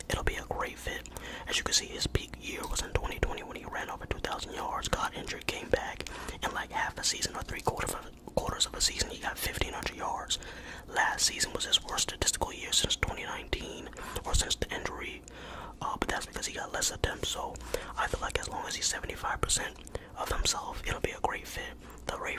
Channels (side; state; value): both; identical; correlation 1.00